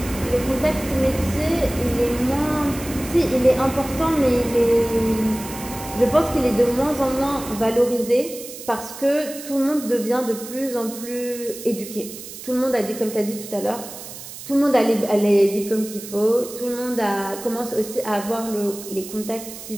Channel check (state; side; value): noise; right; hiss, 13 dB below the sound